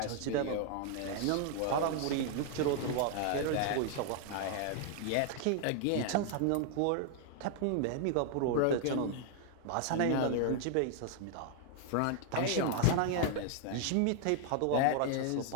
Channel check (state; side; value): different; both; correlation 0.00